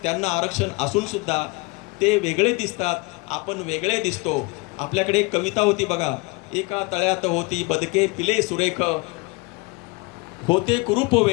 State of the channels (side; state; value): right; quieter; 26.1 dB